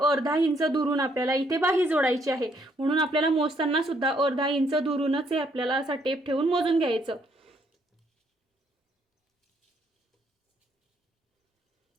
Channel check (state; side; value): normal; both; correlation 0.70